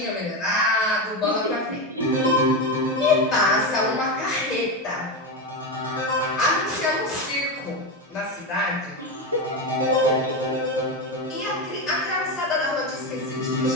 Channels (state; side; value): normal; both; correlation 0.14